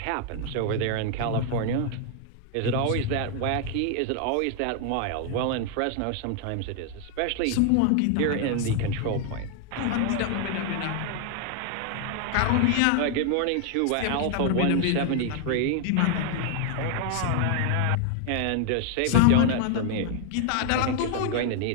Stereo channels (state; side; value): different; both; correlation 0.00